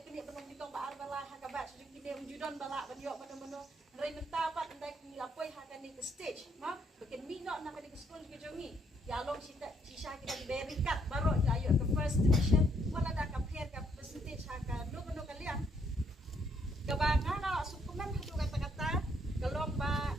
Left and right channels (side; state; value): both; normal; correlation 0.71